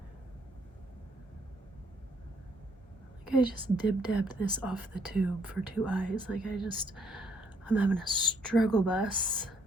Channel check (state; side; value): normal; both; correlation 0.68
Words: I just dib-dabbed this off the tube for 2 eyes. Like I'm having a struggle bus